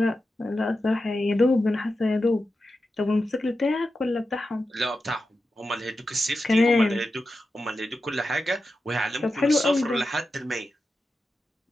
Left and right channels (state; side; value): normal; both; correlation 0.91